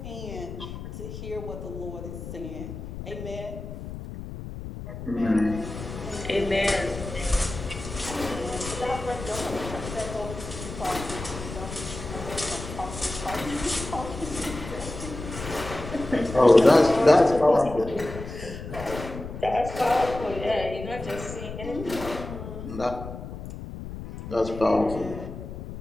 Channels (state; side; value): noise; left; rumble, 9 dB below the sound